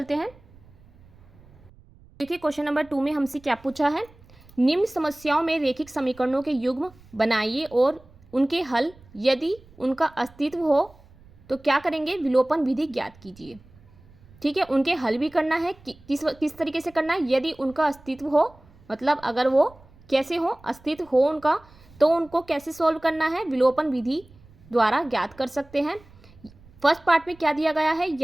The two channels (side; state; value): right; noise; rumble, 25 dB below the sound